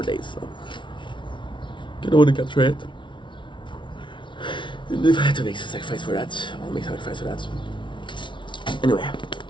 days, so I don't want to capture it. And if I had to make a sacrifice for that, I'll make a sacrifice for that. Anyway,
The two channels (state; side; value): late; right; 0.24 ms